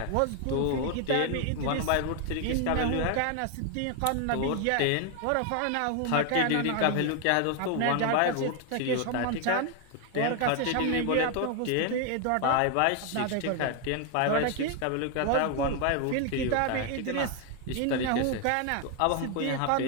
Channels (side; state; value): both; different; correlation 0.01